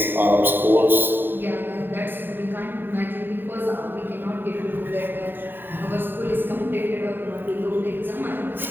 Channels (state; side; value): late; left; 0.094 ms